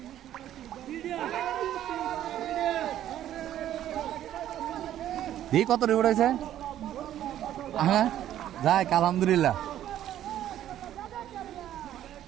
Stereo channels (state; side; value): quieter; left; 11.9 dB